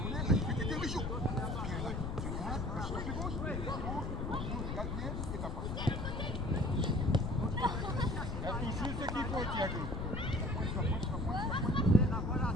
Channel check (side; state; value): left; noise; rumble, 3 dB below the sound